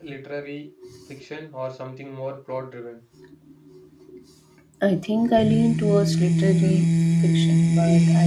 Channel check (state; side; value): identical; both; correlation 1.00